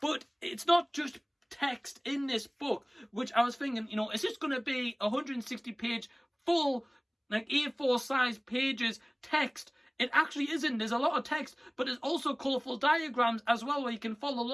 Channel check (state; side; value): identical; both; correlation 1.00